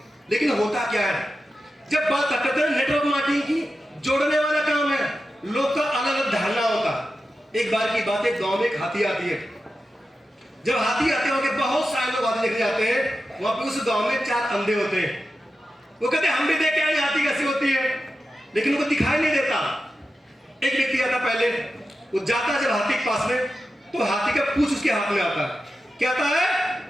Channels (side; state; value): both; normal; correlation 0.91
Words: लेकिन होता क्या है, जब बात करते हैं नेटवर्क मार्केटिंग की, जोड़ने वाला काम है, लोग का अलग अलग धारणा होता। एक बार की बात है, गांव में एक हाथी आती है। जब हाथी आते हैं, बहुत सारे लोग हाथी देखने जाते हैं। वहां पे उस गांव में 4 अंधे होते हैं। वो कहते हैं हम भी देख के आए हाथी कैसी होती है, लेकिन उनको दिखाई नहीं देता। एक व्यक्ति आता पहले, वो जाता जब हाथी के पास में, तो हाथी का पूंछ उसके हाथ में आता है। क्या आता है?